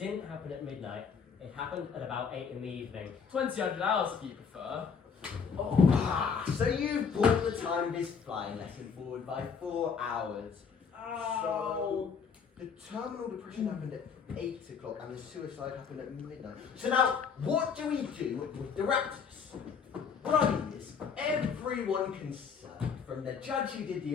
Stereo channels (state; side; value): quieter; right; 6.2 dB